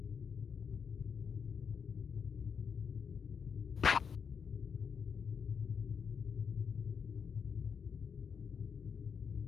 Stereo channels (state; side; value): quieter; right; 6.5 dB